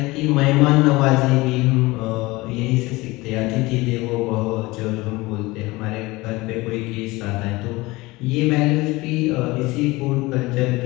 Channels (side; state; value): right; quieter; 21.4 dB